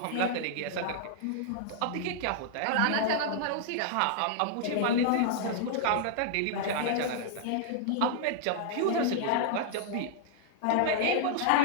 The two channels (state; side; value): different; both; correlation -0.01